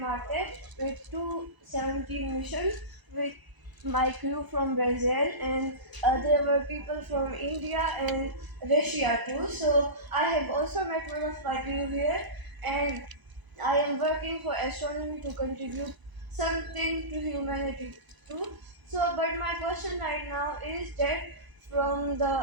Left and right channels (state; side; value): late; left; 1.0 ms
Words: with 217 missions with my crew from Brazil, and there were people from India and Russia too. So I have also met one of my crew here, and I am working for astronomy to contribute something to humanity too. But my question right now is that from